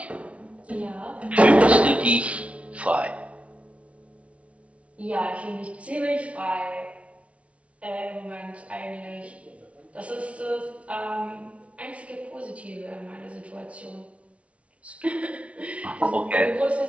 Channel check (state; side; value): late; left; 0.063 ms